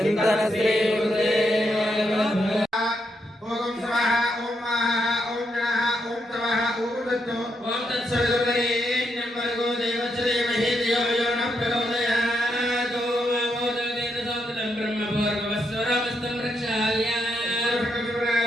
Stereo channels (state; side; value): normal; both; correlation 0.80